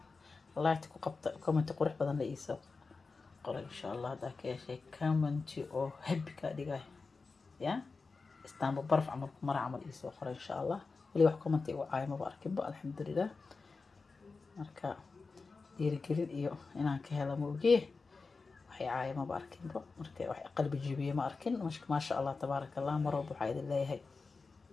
ku qabta comment qurux badan la iiso qor insha Allah hada ka yeeshay comment oo happy ka dhigay ya istaanba barf amal mar amal iiso qor insha Allah wali wax comment igu caayma ba arkin ba alxamdulillah marka dhiirigelin iyo inaan ka helo mooge waxay caayma ba arkin ba marka wax qalbi jibiye ma arkin ma sha Allah tabaaraka Allah marwab waxa idin leeyahay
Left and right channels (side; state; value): right; quieter; 4.2 dB